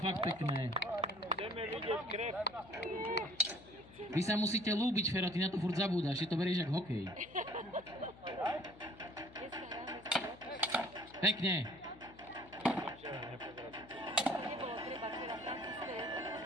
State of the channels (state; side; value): noise; left; hum, 20 dB below the sound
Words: fakt pekné. Vy sa musíte ľúbiť, Fero, ty na to furt zabúdaš. Ty to berieš jak hokej. Pekne.